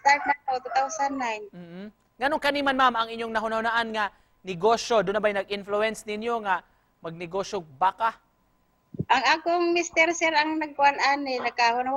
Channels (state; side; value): identical; both; correlation 1.00